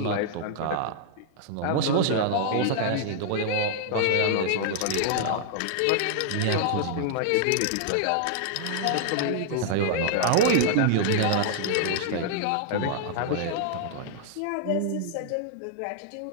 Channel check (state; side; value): different; both; correlation -0.01